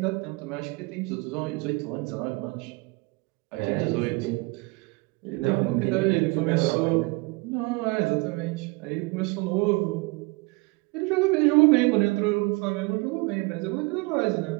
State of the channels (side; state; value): left; quieter; 26.2 dB